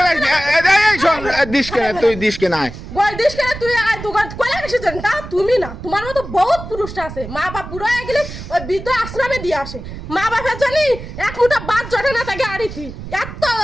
দিস কে তুই দিস কে নাই গোল দিস কেন তুই আয় দোকান কইলা কিছু জান না তুমি না তোমার মতো বহুত পুরুষটা আছে মা বাপ বুড়ো হয়ে গেলে ওই বৃদ্ধ আশ্রমে দিয়ে আসে মা বাপের জানি এক মুঠা ভাত জটে না তাকে আড়িতি এত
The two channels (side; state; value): right; noise; rumble, 11 dB below the sound